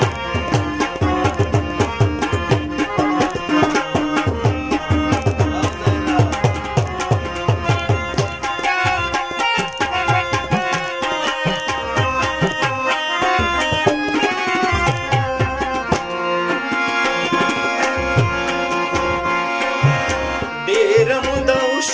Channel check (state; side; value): identical; both; correlation 1.00